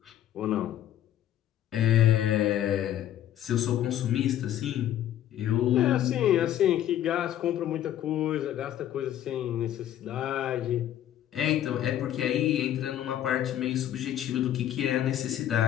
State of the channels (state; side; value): quieter; right; 11.7 dB